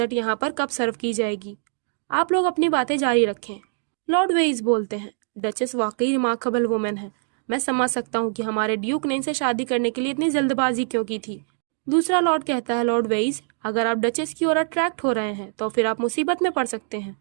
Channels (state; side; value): silent; left; 63 dB below the other